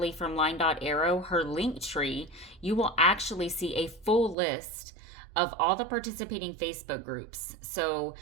from Line.Arrow, her link tree, you will actually see a full list of all the participating Facebook groups. So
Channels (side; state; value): left; drops out; at 4.4 s